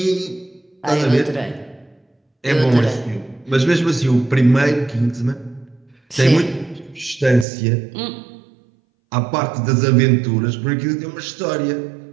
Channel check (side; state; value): left; drops out; at 7.5 s